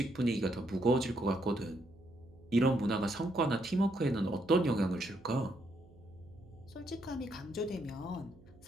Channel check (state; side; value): noise; right; hum, 24 dB below the sound